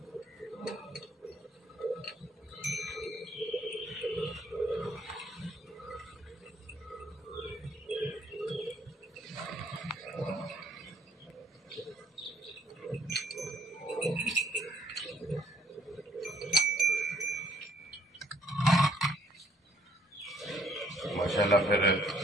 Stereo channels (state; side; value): normal; both; correlation 0.62